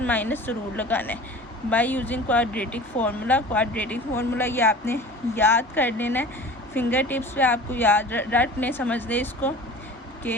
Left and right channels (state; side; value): normal; both; correlation 0.39